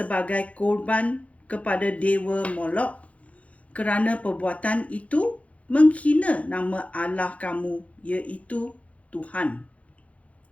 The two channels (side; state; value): right; late; 0.065 ms